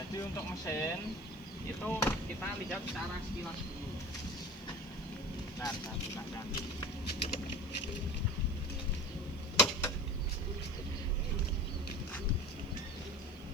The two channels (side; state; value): right; noise; hiss, 27 dB below the sound